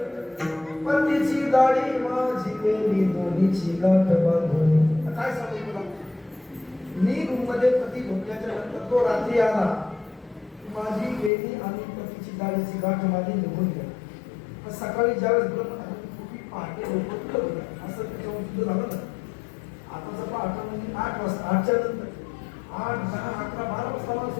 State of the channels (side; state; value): right; drops out; at 11.3 s